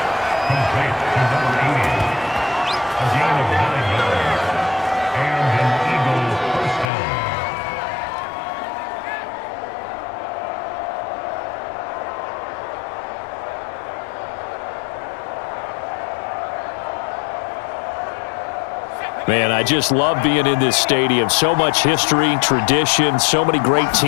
Man, I just love being in this stadium. So much history, tradition, so many great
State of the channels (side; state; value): right; drops out; at 6.9 s